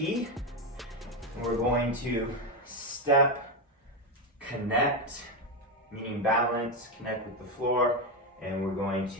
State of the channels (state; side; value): normal; both; correlation 0.09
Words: And we're going to step, connect, meaning balance, connect with the floor, and we're going